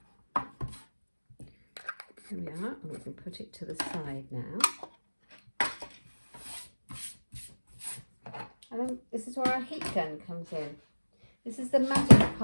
There we are, and we can put it to the side now. And then this is where our heat gun comes in. This is the magic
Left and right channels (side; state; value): both; inverted; correlation -1.00